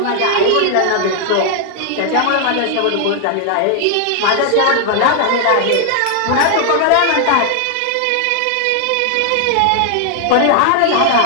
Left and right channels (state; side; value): different; both; correlation 0.00